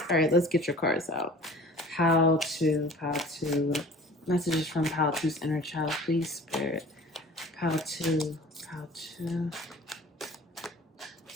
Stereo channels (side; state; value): both; normal; correlation 0.45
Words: All right, let's get your cards out. Pile 2. Messages from Pile 2's inner child, please, Spirit. Pile 2.